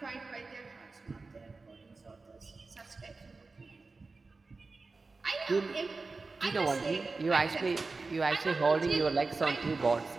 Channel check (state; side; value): quieter; left; 3.8 dB